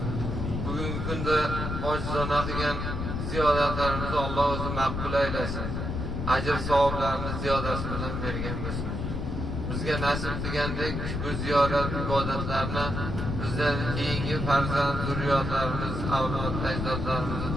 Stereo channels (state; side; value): noise; left; rumble, 3 dB below the sound